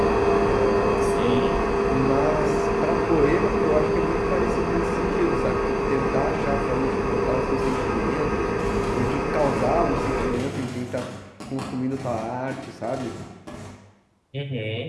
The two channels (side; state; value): both; identical; correlation 1.00